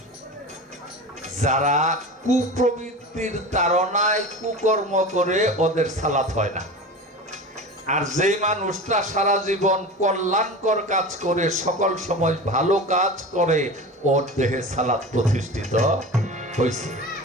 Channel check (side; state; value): both; normal; correlation 0.31